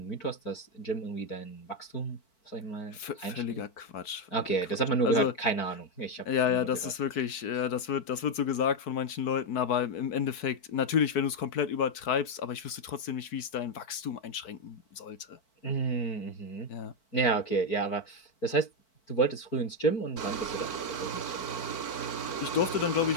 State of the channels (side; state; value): right; late; 4.6 ms